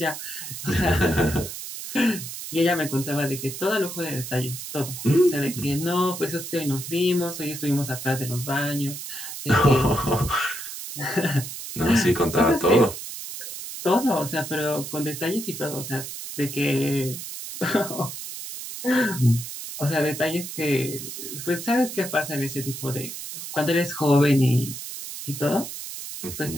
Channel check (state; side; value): noise; right; hiss, 9 dB below the sound